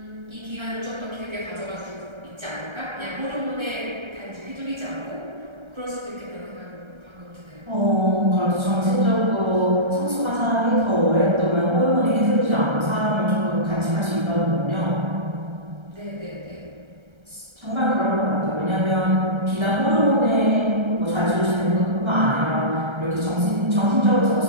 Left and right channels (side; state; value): left; late; 1.3 ms